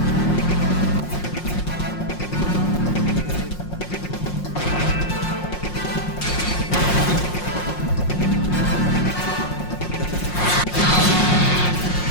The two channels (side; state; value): right; late; 5.6 ms